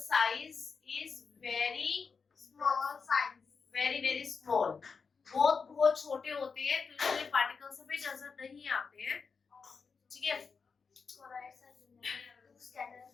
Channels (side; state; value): right; quieter; 5.2 dB